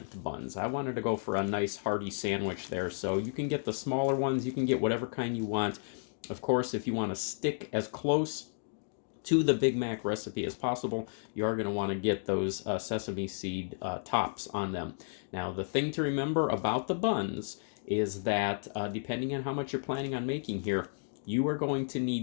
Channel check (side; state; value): right; silent; digital silence